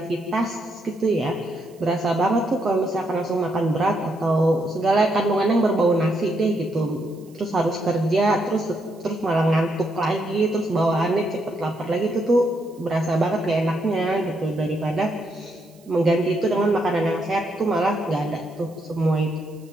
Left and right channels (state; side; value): noise; right; hiss, 30 dB below the sound